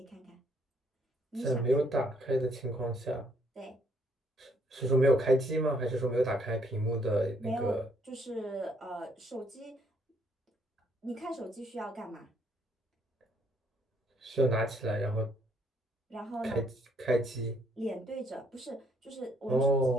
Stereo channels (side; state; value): both; normal; correlation 0.68